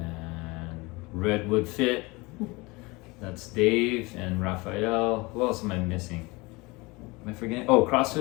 Redwood Fit. That's Dave and Raphael. Who else am I missing? Am I forgetting?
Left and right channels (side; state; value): right; quieter; 24.5 dB